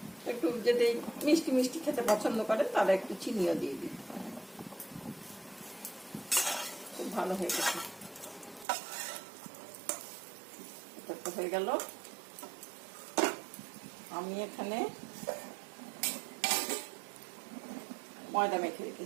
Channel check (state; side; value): drops out; left; at 8.7 s